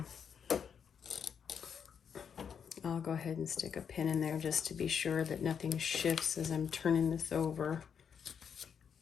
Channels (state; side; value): quieter; right; 7.3 dB